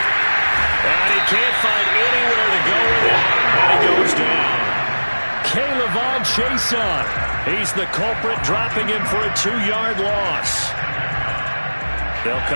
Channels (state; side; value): inverted; both; correlation -1.00